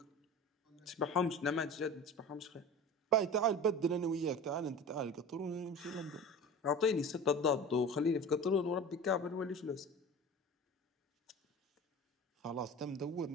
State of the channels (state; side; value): normal; both; correlation 0.35